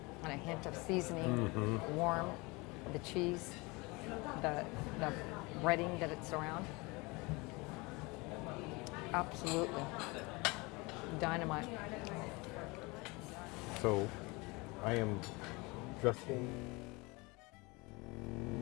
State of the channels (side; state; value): right; quieter; 25.6 dB